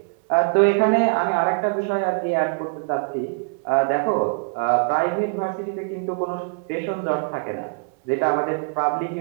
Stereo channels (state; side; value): quieter; left; 37.9 dB